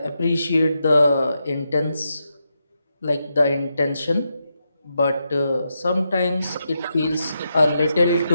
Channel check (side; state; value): both; inverted; correlation -0.85